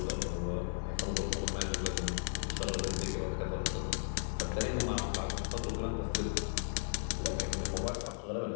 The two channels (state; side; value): silent; right; digital silence